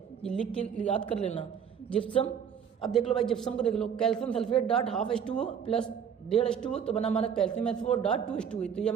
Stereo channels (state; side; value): quieter; left; 7.8 dB